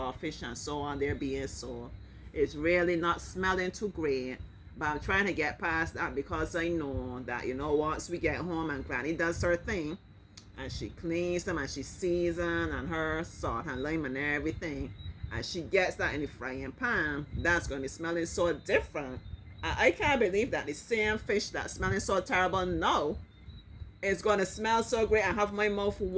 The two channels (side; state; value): both; identical; correlation 1.00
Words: fish and so on. They're being sold. It's really not smelling too great. But I'm trying to get past that because I know that, you know, once we get home and granny does her thing and she cleans them and she seasons and her salt and lime and everything, and she gets that in the frying pan, that's going to be smelling so different. I can't believe that the same fish that's smelling so terrible now, it's gonna smell so great and have my mouth